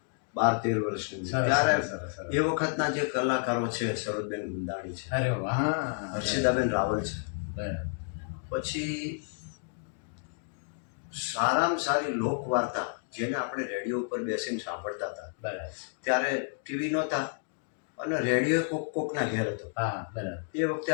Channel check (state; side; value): silent; right; 57 dB below the other